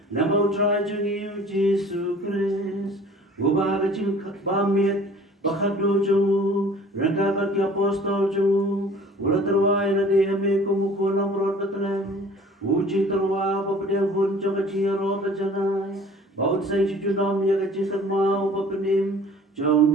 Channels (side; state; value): both; normal; correlation 0.49